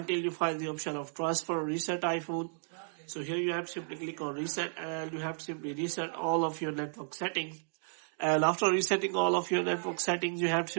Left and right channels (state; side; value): silent; left; digital silence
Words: you find the option of transfer reset iPhone. So here you have to simply click on reset and you have to simply reset all of your network settings. And after resetting all of your network settings, you have to